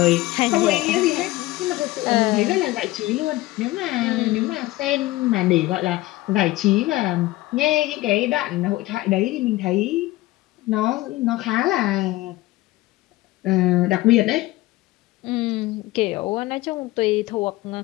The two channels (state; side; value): quieter; right; 18.2 dB